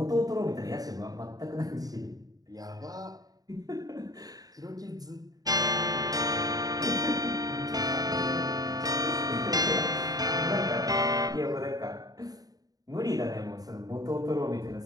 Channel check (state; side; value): late; left; 0.18 ms